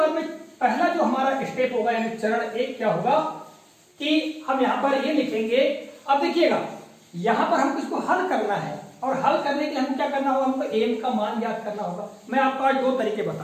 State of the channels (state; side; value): identical; both; correlation 1.00